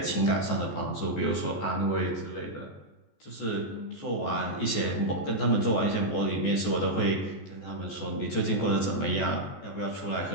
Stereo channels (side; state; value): right; late; 14 ms